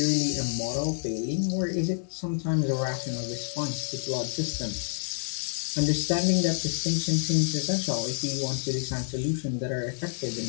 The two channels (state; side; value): silent; right; digital silence